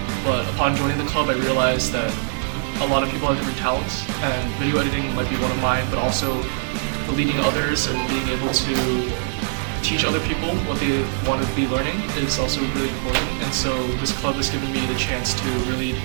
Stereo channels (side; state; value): left; silent; digital silence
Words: But upon joining the club, I realized that a lot of people have different talents, and video editing might be one of mine, but also leading others and being able to teach other people what they want to be learning is also really important. And so this club has given me the chance to really